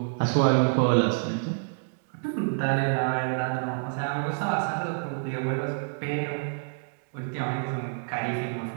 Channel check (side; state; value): left; silent; digital silence